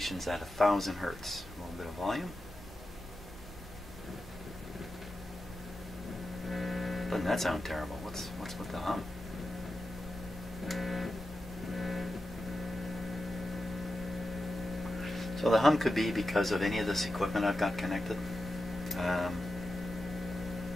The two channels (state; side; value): normal; both; correlation 0.90